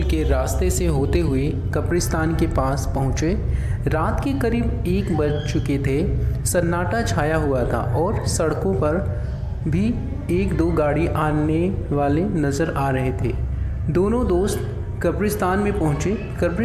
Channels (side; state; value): both; identical; correlation 1.00